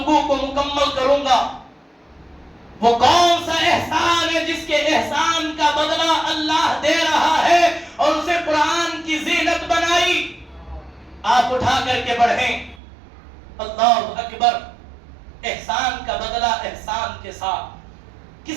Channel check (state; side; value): drops out; left; at 12.8 s